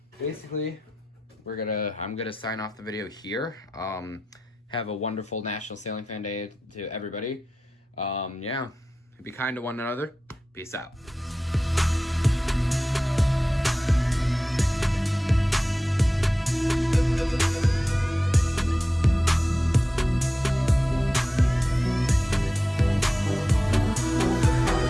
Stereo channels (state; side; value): normal; both; correlation 0.93